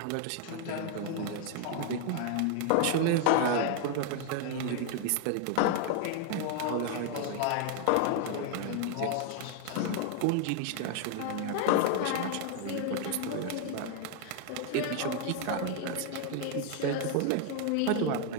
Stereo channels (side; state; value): both; different; correlation 0.00